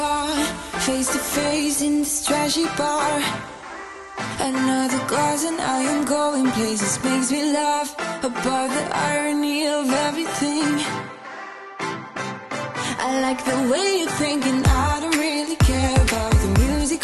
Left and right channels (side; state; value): both; identical; correlation 1.00